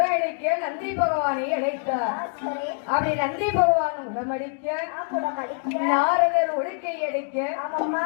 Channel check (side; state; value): right; silent; 62 dB below the other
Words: நந்தி பகவானை அழைத்தார். அப்படி நந்தி பகவான் உடமடிக்க நாரதர் ஒழுக்கை அடிக்க